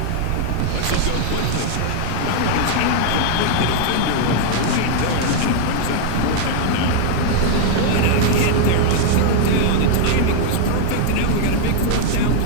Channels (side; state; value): both; different; correlation 0.00